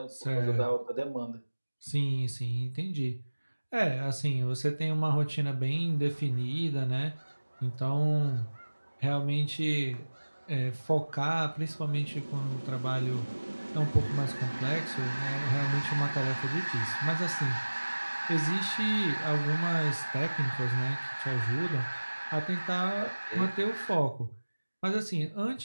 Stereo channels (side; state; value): both; inverted; correlation -1.00